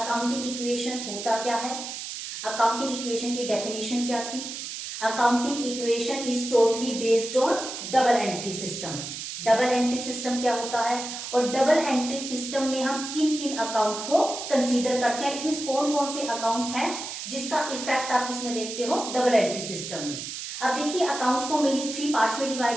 equation होता क्या है, accounting equation की definition क्या थी. Accounting equation is totally based on double entry system. Double entry system क्या होता है और डबल एंट्री सिस्टम में हम किन किन अकाउंट को कंसीडर करते हैं. इट मींस कौन कौन से अकाउंट हैं जिसका इफेक्ट आप इसमें देखते हो डबल एंट्री सिस्टम में. अब देखिए अकाउंट्स को मेनली 3 पार्ट्स में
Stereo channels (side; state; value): right; noise; hiss, 7 dB below the sound